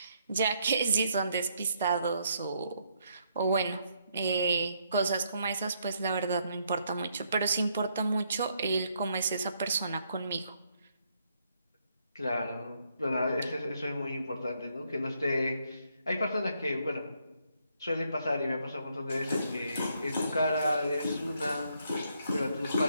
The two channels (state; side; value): inverted; both; correlation -0.74